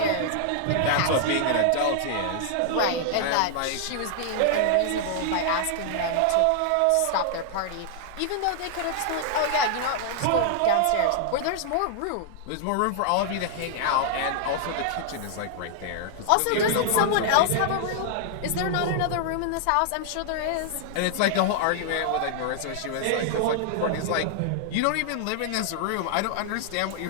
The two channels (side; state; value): both; different; correlation -0.01